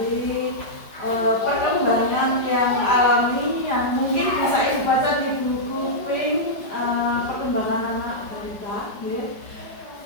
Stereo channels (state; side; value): late; right; 5.1 ms